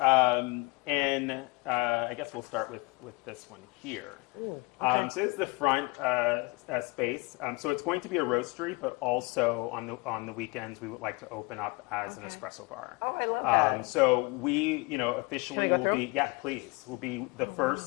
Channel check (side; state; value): right; quieter; 26.8 dB